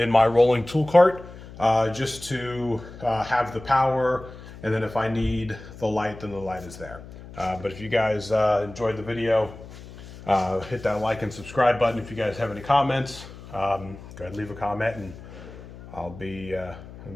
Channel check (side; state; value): left; noise; hum, 16 dB below the sound